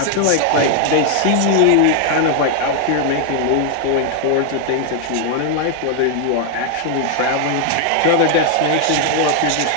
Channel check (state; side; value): different; both; correlation 0.00